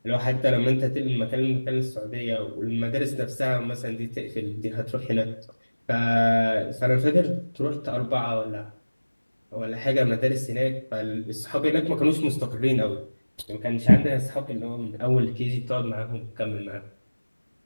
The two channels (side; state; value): both; inverted; correlation -1.00